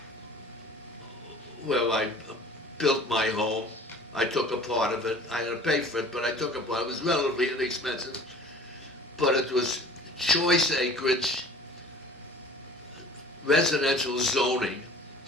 where I built my home. I took a part of it. I had to pay for it, but I took a part. It was relatively inexpensive, but it was choice acreage, residential zoning,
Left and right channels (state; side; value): normal; both; correlation 0.45